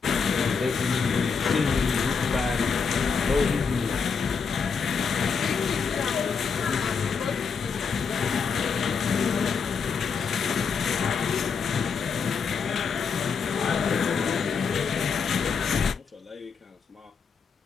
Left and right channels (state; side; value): quieter; right; 5.8 dB